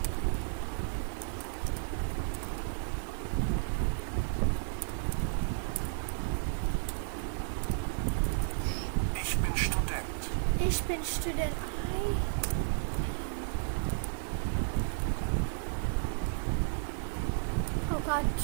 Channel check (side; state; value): left; silent; digital silence